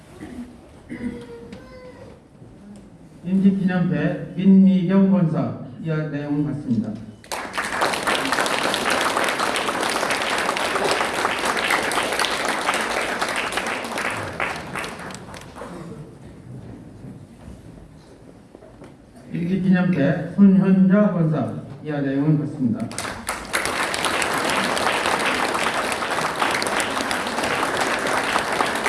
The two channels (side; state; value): both; identical; correlation 1.00